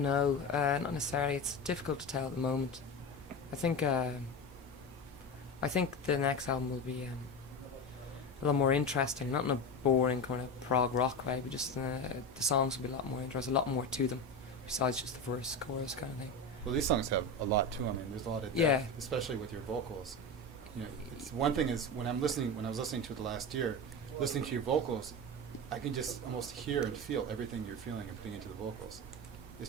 know, not necessarily. It's difficult to tell at the moment. I think the next album will be a lot more interesting, not in a boring kind of prog rock way, but just the songs will be a lot more interesting, a lot more to them, besides just the verse, chorus kind of thing. Well, these songs have a lot to them. I mean, there's a lot of depth, Yeah. especially with your vocals. It's one thing is when I was listening to it last year, listening to your vocals, I can just almost hear and feel everything you're feeling and putting into the vocals.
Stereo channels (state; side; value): normal; both; correlation 0.23